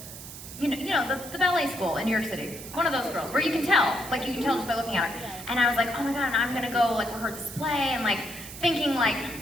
the ballet school in New York City. One of those girls, where you can tell just by looking at her. And I was like, oh my God, I'm gonna go rehearse this play, and thinking hi.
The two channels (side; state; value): right; noise; hiss, 13 dB below the sound